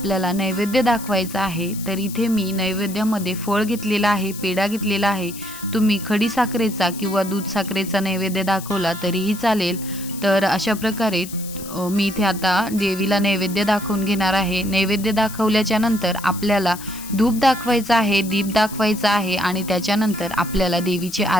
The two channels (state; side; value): noise; left; hiss, 13 dB below the sound